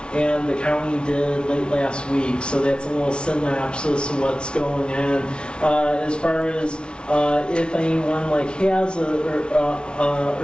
and the county did late last week. So that's a little synopsis of what's going on. As far as if anyone like has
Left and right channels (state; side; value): late; right; 0.057 ms